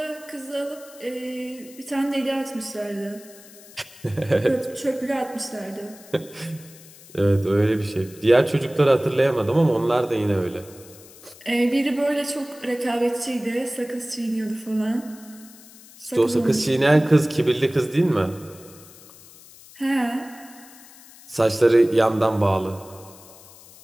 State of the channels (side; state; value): left; noise; hiss, 21 dB below the sound